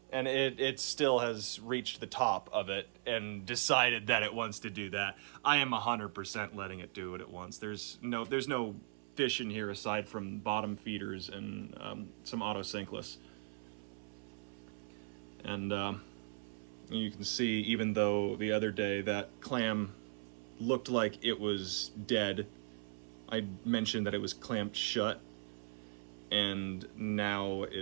and it still has reached the top of it and decided that it wants to do that. I am 100% letting it do what it wants. There's no fish in here aside from bottom feeders and some autocinklus. And you can see, even though the other day that clam looked like it was dead, I mentioned that it was clamped shut, and now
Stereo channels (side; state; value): left; silent; 52 dB below the other